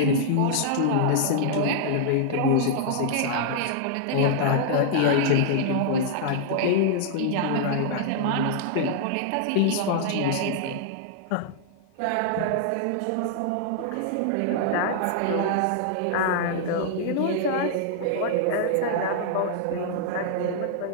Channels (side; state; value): both; different; correlation -0.01